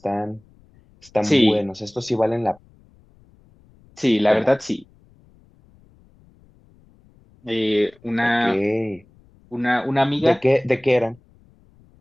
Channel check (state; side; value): noise; left; rumble, 30 dB below the sound